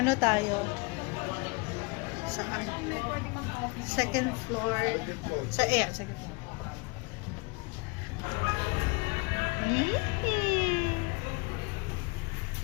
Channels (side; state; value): right; quieter; 29.7 dB